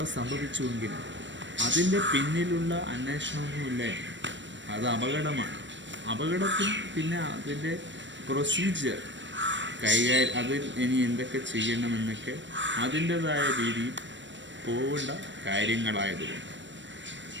സംഭവിച്ചുവെങ്കിൽ അതിൻ്റെ പിന്നിലുള്ള അന്വേഷണമൊന്നുമില്ല. അത് അപകടമാണ്. അപകടത്തിൽ പിന്നെ അതിൻ്റെ പ്രൊസീജിയർ അതിൽ ഇനി എന്തൊക്കെ ചെയ്യണമെന്നൊക്കെ അതിൻ്റെതായ രീതിയിൽ പോകേണ്ട കാര്യങ്ങളായതുകൊണ്ട്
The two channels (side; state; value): left; late; 0.53 ms